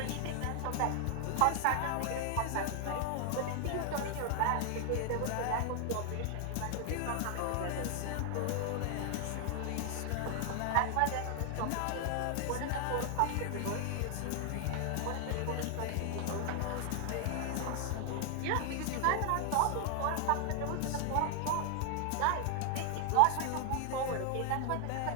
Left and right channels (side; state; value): both; different; correlation 0.00